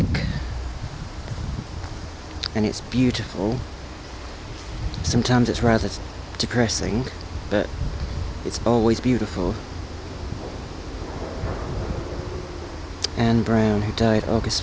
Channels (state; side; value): identical; both; correlation 1.00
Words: And it's beautiful. Sometimes it's rather depressing, but it's always beautiful. Anne Brown, who died